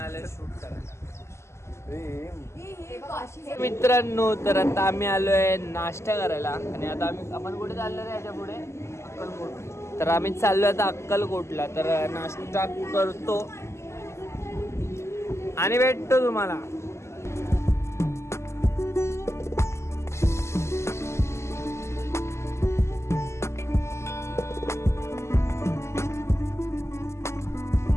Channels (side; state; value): right; late; 0.13 ms